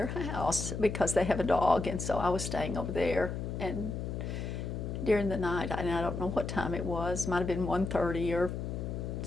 house because they have a dog, and so I was staying over there. And during the night, and I don't know what time it was, might have been 1:30 or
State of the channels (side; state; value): left; noise; hum, 4 dB below the sound